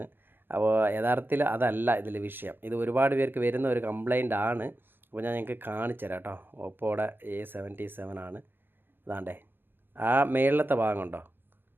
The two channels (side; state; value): left; late; 0.10 ms